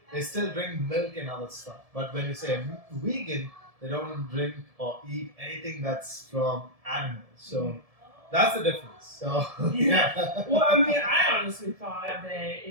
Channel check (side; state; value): left; late; 1.7 ms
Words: they still drink milk and other stuff. But when you say vegan, they don't drink or eat anything that's from animals. So that's the difference. So yeah. Well, I mean, I honestly thought that